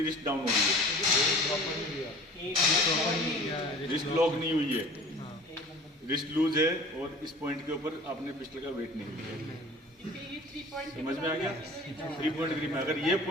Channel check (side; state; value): both; normal; correlation 0.43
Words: रिस्ट डाउन हो रही है, रिस्ट लॉक नहीं हुई है, रिस्ट लूज है, और इस पॉइंट के ऊपर आपने पिस्टल का वेट नहीं लिया है। ये 3 पॉइंट समझ में आ गया? 3 पॉइंट ग्रिप में अगर ये